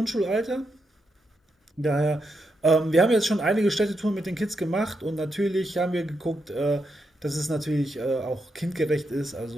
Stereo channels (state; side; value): normal; both; correlation 0.83